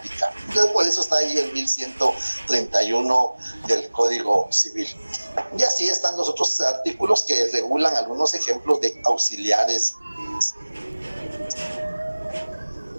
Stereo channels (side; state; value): both; inverted; correlation -1.00